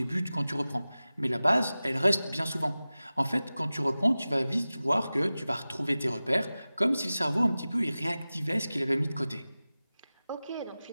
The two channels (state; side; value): inverted; both; correlation -0.97